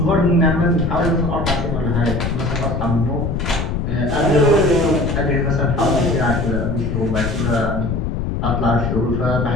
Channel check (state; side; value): noise; left; rumble, 1 dB below the sound